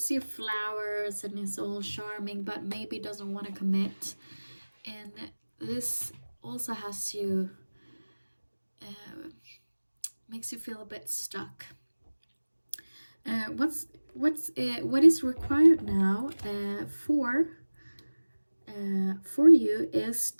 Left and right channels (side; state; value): both; inverted; correlation -1.00